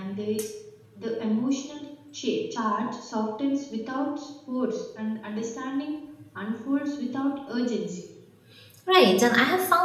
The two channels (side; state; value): both; identical; correlation 1.00